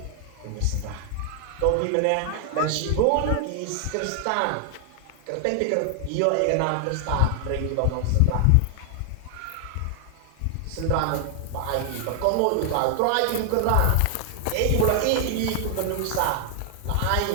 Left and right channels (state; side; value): different; both; correlation 0.00